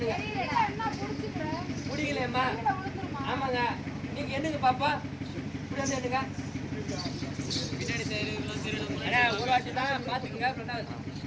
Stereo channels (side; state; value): both; identical; correlation 1.00